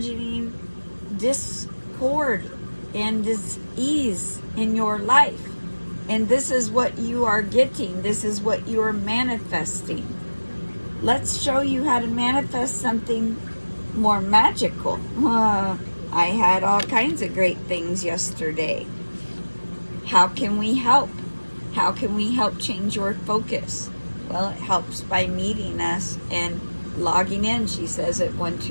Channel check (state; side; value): inverted; both; correlation -1.00